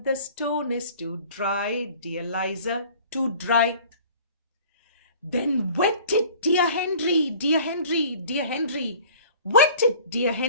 The stone is too dry, dear Liza, too dry. Then wet it, dear Henry, dear Henry, dear Henry. Wet it, dear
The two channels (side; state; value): both; inverted; correlation -0.48